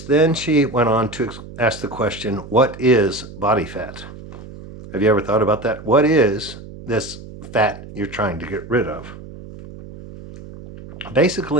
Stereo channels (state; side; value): noise; right; hum, 15 dB below the sound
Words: then she went on to ask the question, what is body fat? Have you ever thought about that? What is this fat you're trying to get rid of?